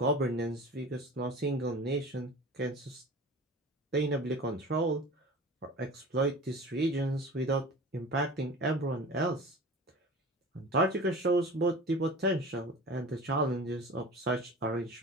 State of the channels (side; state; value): both; normal; correlation 0.37